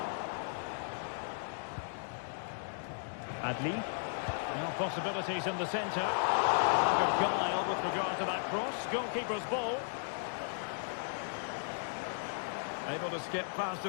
Adli. Now possibilities in the centre. Lack of guile with regard to that cross. Goalkeeper's ball. Able to skip past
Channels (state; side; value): silent; right; digital silence